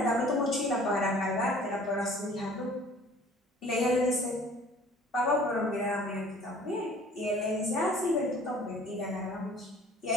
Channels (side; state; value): both; normal; correlation 0.51